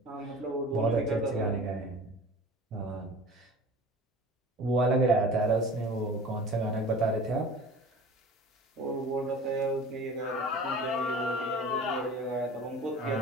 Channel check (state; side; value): normal; both; correlation 0.40